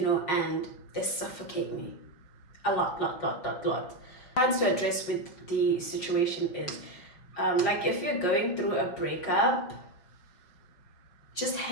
know, and they suffocate me a lot. Trying to address with the situation is like if you're going through a breakup, just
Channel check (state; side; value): late; right; 5.6 ms